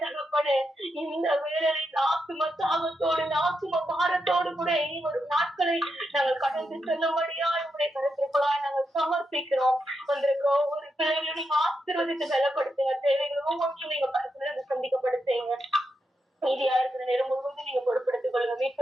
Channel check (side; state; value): both; normal; correlation 0.85